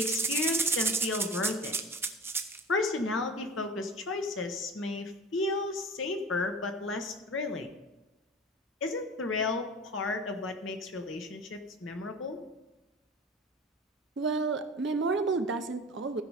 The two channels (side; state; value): both; normal; correlation 0.37